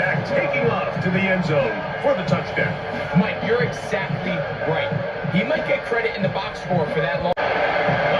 taking off to the end zone for the touchdown. Mike, you're exactly right. He might get credit in the box score for that long. A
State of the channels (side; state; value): both; identical; correlation 1.00